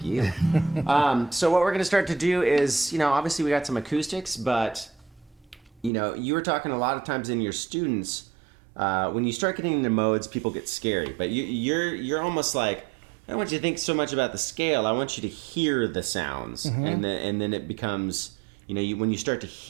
you. So what we're going to start to do is, obviously we got some acoustics, but, you were talking a lot of times in your students, when you start getting into modes, people get scary. But you're almost like, I don't want you to think so much about the scale. I want you to hear the sounds, and then it becomes, when you start to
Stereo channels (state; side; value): drops out; left; at 5.9 s